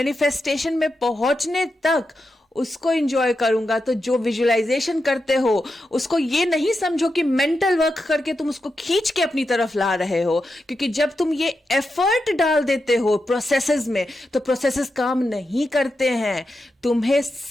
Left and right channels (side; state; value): both; normal; correlation 0.88